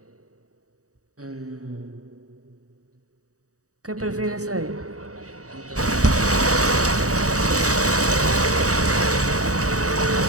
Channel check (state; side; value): late; left; 0.66 ms